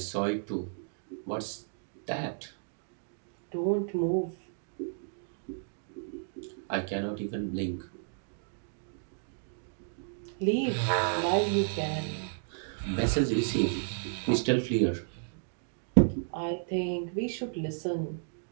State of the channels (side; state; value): left; silent; digital silence